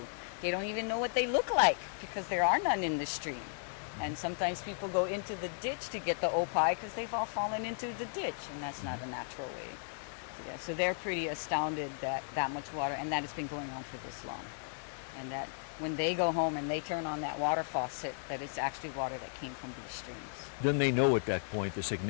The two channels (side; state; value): right; silent; 54 dB below the other